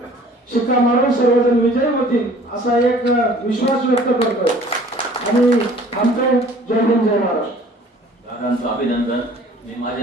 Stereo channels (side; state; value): both; normal; correlation 0.51